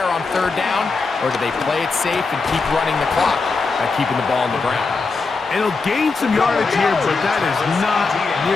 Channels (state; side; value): quieter; right; 4.2 dB